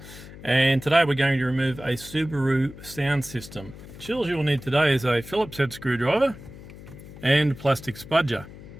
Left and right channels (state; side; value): noise; left; hum, 16 dB below the sound